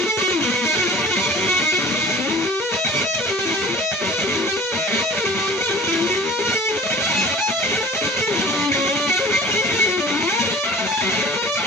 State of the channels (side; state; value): both; normal; correlation 0.44